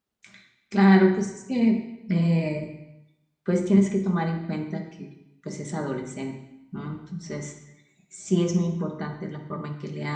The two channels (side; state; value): both; identical; correlation 1.00